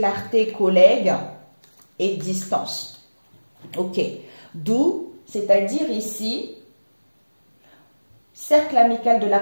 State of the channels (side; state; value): both; inverted; correlation -1.00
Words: collègue et distance. Ok. D'où, c'est-à-dire ici, cercle amical de